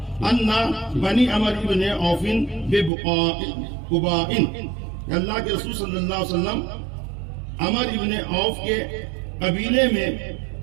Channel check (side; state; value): left; drops out; at 2.9 s